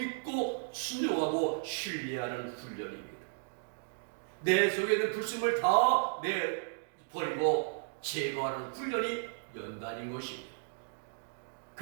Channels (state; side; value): silent; left; digital silence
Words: 순종하고 신뢰하는 훈련입니다. 내 속에 있는 불순을 다 버리고 제거하는 훈련이 연단인 것입니다.